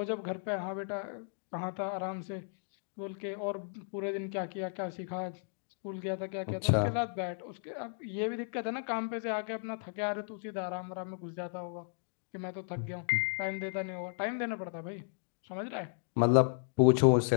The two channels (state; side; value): silent; right; digital silence